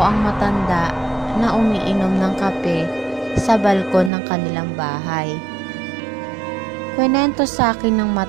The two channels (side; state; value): left; drops out; at 4.1 s